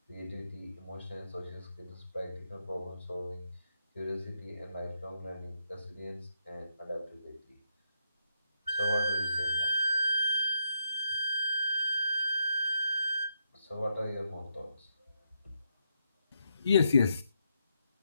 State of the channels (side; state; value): both; inverted; correlation -0.81